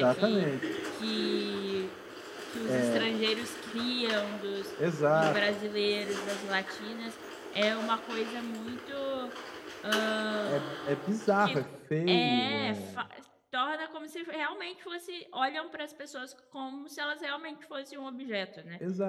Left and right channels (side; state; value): both; identical; correlation 1.00